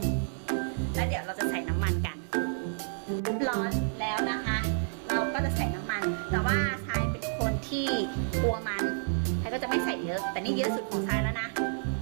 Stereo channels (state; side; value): silent; left; digital silence